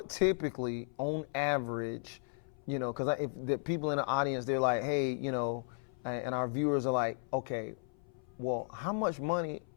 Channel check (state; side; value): silent; right; 54 dB below the other